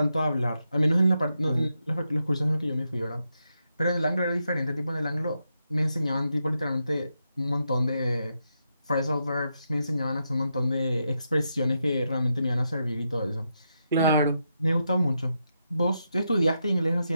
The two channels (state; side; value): inverted; both; correlation -0.84